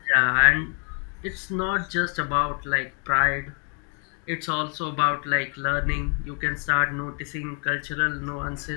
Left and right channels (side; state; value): right; quieter; 39.5 dB